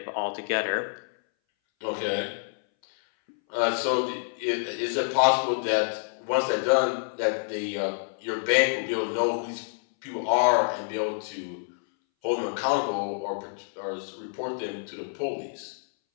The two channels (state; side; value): silent; right; 60 dB below the other